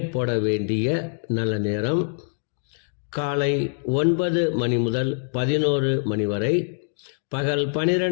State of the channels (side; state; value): right; silent; digital silence